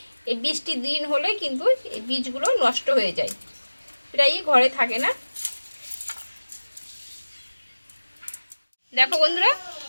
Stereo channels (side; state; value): both; inverted; correlation -1.00